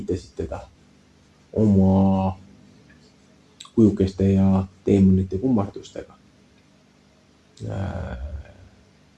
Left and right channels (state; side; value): identical; both; correlation 1.00